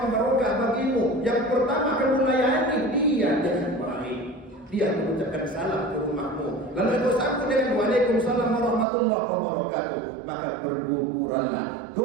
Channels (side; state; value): left; drops out; at 8.8 s